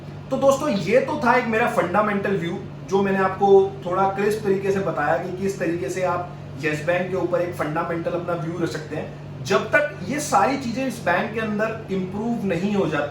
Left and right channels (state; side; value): identical; both; correlation 1.00